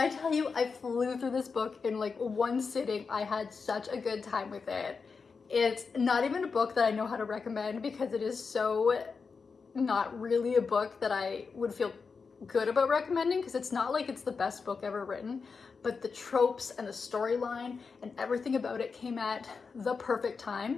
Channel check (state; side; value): quieter; right; 5.1 dB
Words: tell you I flew through this book in like one sitting, I had such a good time with it. It's not even a book that I know how to recommend, because it is so not really a book that I would feel good about recommending, because it's not like it's the best book ever written, but the tropes and the storyline and everything about it came at the perfect